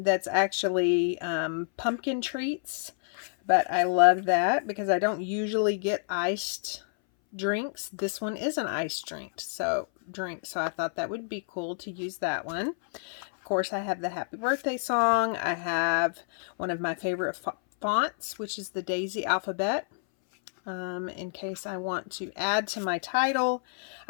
actually pumpkin treats, but I love that because I don't usually get iced drinks. This one is an iced drink, so I thought that would be cool to use that one. Of course, I have the happy birthday song. I have one of my favorite fonts, which is the Daisy alphabet. In case I want to add to my title.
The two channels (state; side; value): silent; right; 58 dB below the other